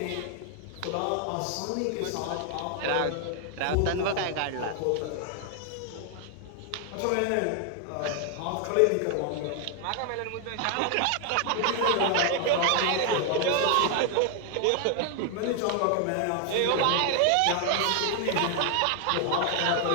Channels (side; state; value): both; different; correlation 0.00